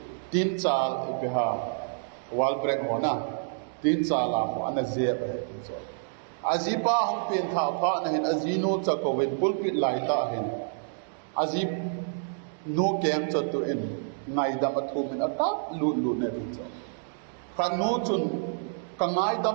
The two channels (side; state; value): left; silent; digital silence